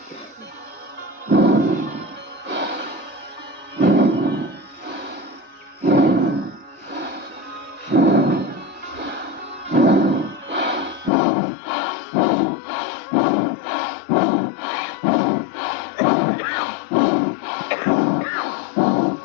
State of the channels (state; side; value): drops out; right; at 11.1 s